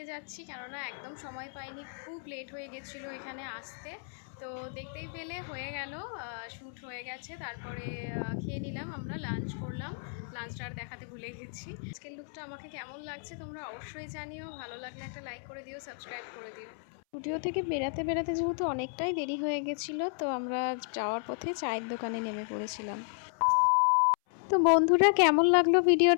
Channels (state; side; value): silent; right; 56 dB below the other